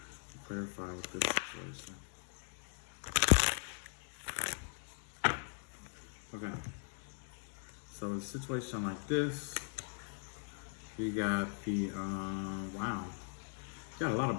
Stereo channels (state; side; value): silent; right; 51 dB below the other